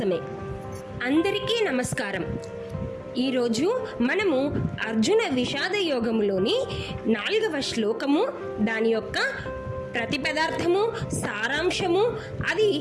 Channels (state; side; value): identical; both; correlation 1.00